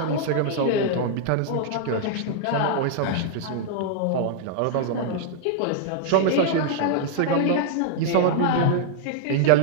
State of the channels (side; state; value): both; different; correlation -0.01